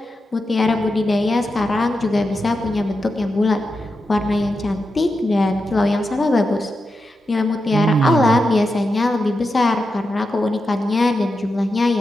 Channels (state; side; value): normal; both; correlation 0.89